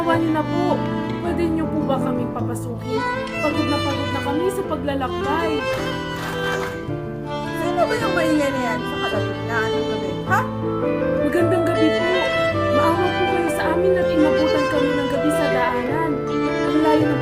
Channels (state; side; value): identical; both; correlation 1.00